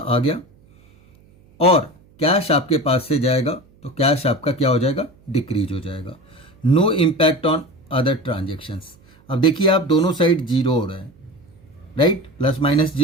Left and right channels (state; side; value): noise; right; hum, 29 dB below the sound